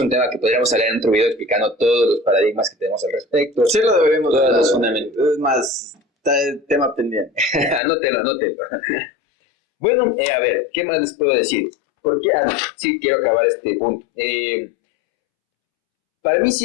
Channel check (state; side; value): drops out; right; at 7.8 s